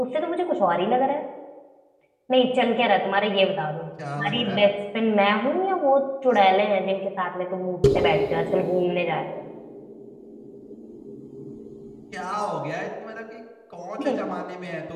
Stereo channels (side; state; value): both; identical; correlation 1.00